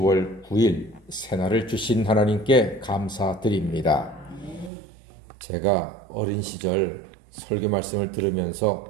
9일 새날을 주신 하나님께 감사드립니다. 제가 어린 시절 설교 말씀을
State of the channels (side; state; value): left; drops out; at 4.7 s